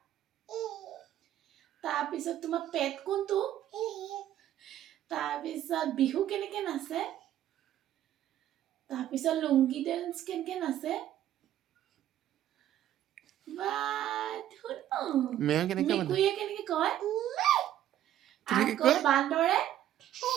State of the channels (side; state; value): left; quieter; 12.0 dB